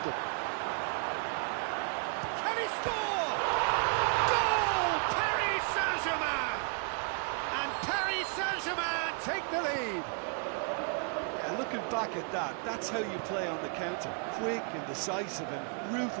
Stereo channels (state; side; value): quieter; left; 39.3 dB